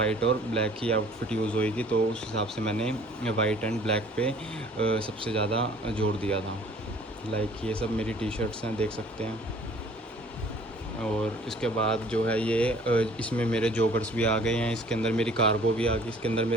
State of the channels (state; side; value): normal; both; correlation 0.53